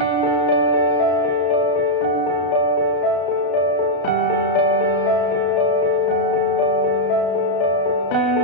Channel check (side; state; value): right; late; 33 ms